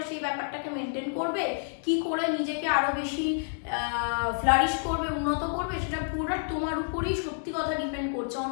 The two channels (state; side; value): silent; right; digital silence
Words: সেই ব্যাপারটাকে মেনটেন করবে, কি করে নিজেকে আরো বেশি ফ্লারিশ করবে, উন্নত করবে, সেটা পুরোটা তোমার উপরেই সত্যি কথা ডিপেন্ড করছে।